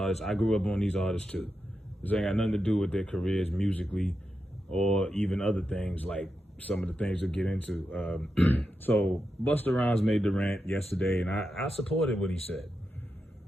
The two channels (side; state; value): both; normal; correlation 0.88